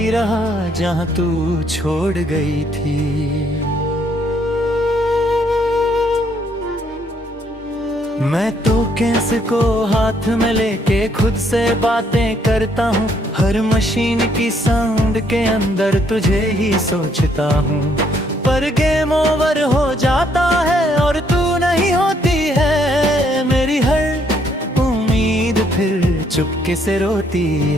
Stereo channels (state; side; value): normal; both; correlation 0.69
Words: रहा जहाँ तू छोड़ गई थी। मैं तो कैसे को हाथ में लेके खुद से बातें करता हूँ। हर मशीन की साउंड के अंदर तुझे ही सोचता हूँ। पर गेम ओवर हो जाता है और तू नहीं होती है। मेरी हर उम्मीद फिर चुपके से रोती